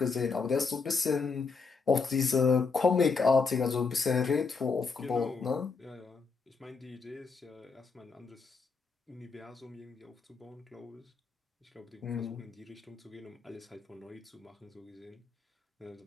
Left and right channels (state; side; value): quieter; right; 4.8 dB